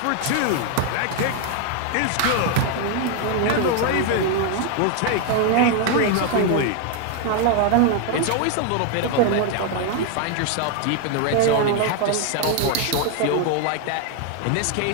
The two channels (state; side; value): different; both; correlation 0.00